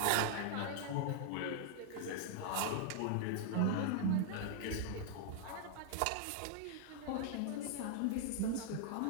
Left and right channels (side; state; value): both; different; correlation -0.01